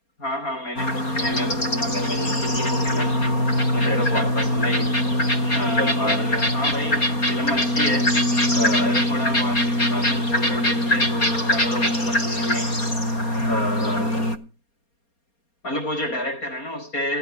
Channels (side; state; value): right; late; 4.3 ms